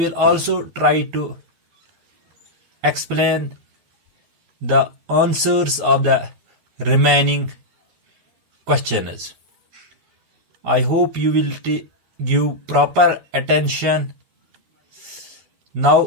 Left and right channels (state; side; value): late; left; 13 ms